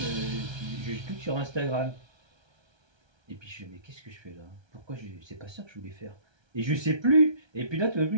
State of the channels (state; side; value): late; left; 1.3 ms